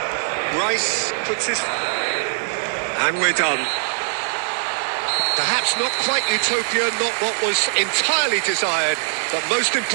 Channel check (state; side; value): silent; left; 65 dB below the other